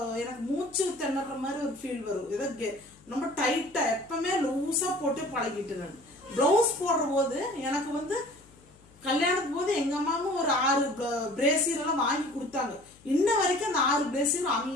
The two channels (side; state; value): left; noise; hum, 27 dB below the sound